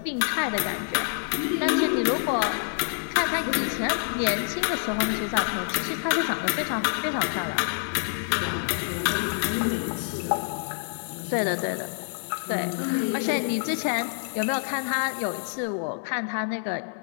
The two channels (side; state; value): right; silent; digital silence